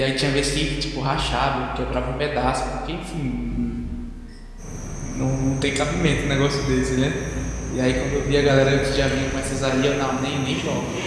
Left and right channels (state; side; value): identical; both; correlation 1.00